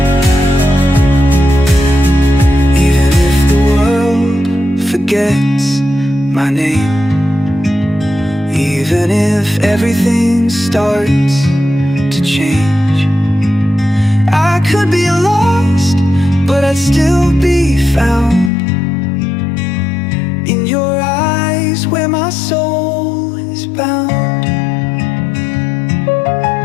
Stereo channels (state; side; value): drops out; right; at 18.5 s